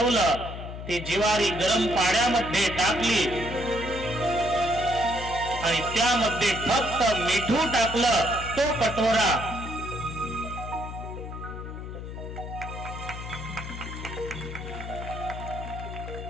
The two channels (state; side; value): noise; left; hum, 9 dB below the sound